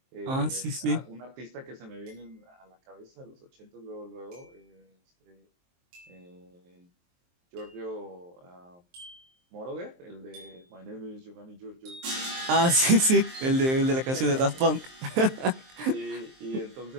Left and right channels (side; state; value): left; late; 23 ms